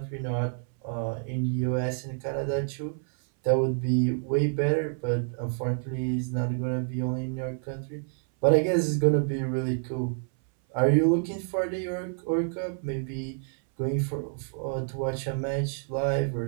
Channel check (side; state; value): left; silent; 59 dB below the other